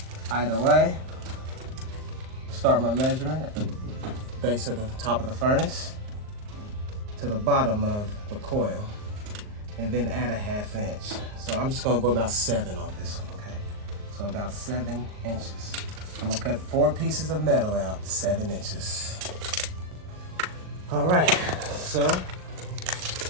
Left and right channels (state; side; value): late; left; 38 ms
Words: Either way, start my measurement at the base of the top of the furnace to the bottom of the coil, and then add a 1/2 inch. So I'm just gonna go about 7 on this one, okay? So about 7 inches. I'm gonna cut 4 pieces of metal out, 7 inches. All right, so